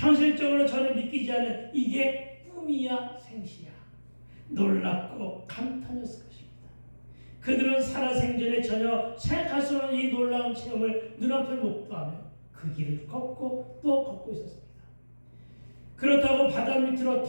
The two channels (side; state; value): both; inverted; correlation -1.00